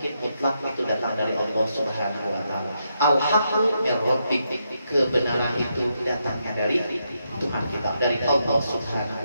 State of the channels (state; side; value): inverted; both; correlation -0.81